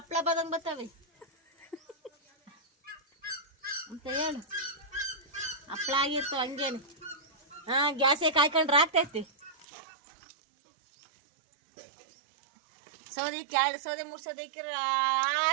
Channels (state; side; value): drops out; left; at 9.7 s